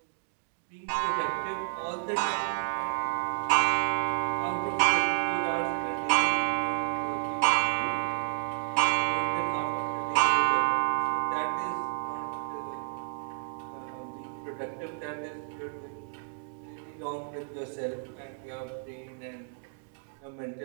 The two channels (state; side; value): silent; left; digital silence